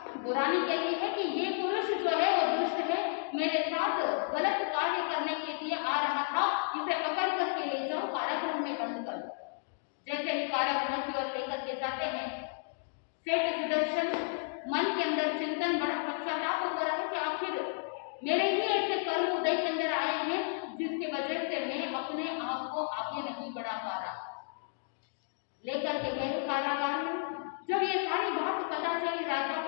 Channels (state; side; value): silent; right; digital silence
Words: वो रानी कहती है कि ये पुरुष जो है वो दुष्ट है, मेरे साथ गलत कार्य करने के लिए आ रहा था, इसे पकड़ करके ले जाओ, कारागृह में बंद कर दो। जैसे ही कारागृह की ओर लेकर के जाते हैं, सेठ सुदर्शन मन के अंदर चिंतन, बड़ा पश्चाताप हो रहा है कि आखिर मेरे ही ऐसे कर्म उदय के अंदर आए हैं जिसकी वजह से मैं अपने आप को आगे नहीं बढ़ा पा रहा। लेकर के गए कारागार में। जब ये सारी बात पता चली राजा